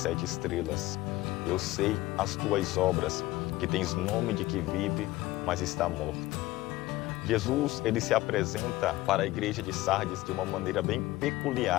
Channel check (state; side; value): quieter; right; 17.9 dB